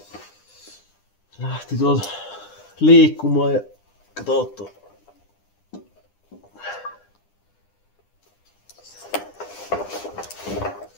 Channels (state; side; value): late; right; 9.9 ms